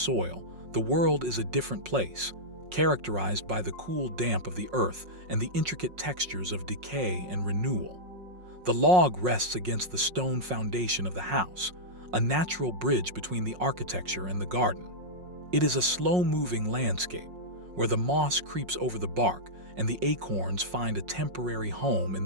the world is a different place, characterized by the cool damp of the earth and the intricate textures of decay and renewal. The log rests against the stone foundation of the house, a natural bridge between the architecture and the garden. It is a slow-moving landscape, where the moss creeps over the bark and the acorns find a temporary home in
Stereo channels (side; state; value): left; late; 5.5 ms